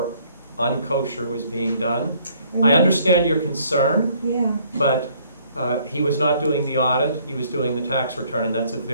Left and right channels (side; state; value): both; inverted; correlation -0.62